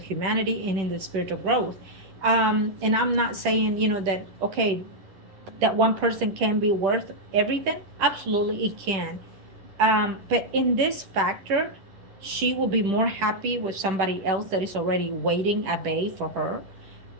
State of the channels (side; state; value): left; late; 10 ms